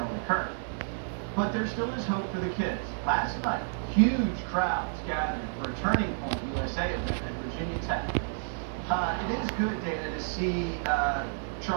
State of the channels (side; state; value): left; silent; digital silence